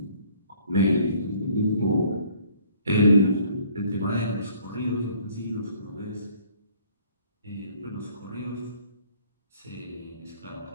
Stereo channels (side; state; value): both; inverted; correlation -0.59